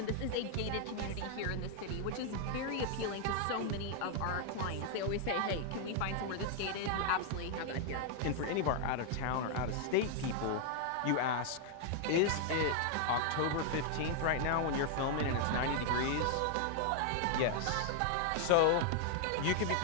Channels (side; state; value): both; different; correlation 0.00